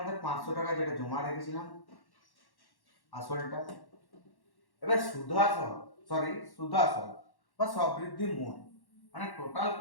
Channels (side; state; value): right; late; 1.1 ms